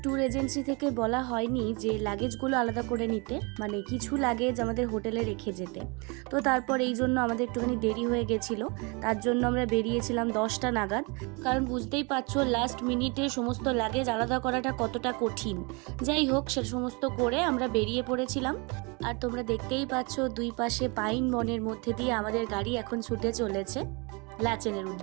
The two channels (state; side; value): quieter; left; 30.3 dB